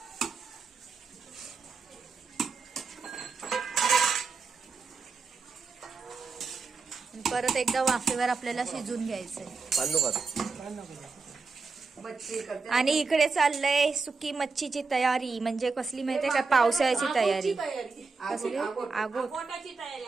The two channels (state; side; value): quieter; left; 4.5 dB